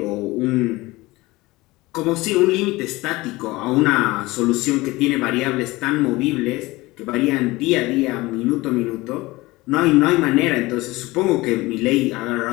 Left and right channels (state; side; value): quieter; right; 20.6 dB